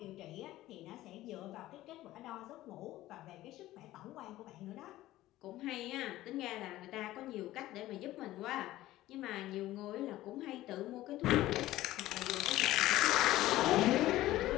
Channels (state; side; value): quieter; right; 15.7 dB